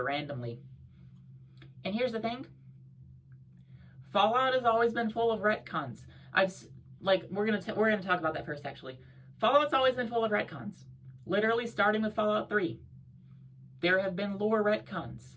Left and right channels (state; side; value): identical; both; correlation 1.00